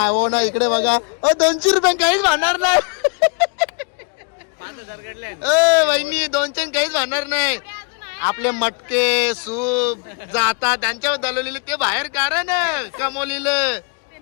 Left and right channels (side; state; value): right; quieter; 35.6 dB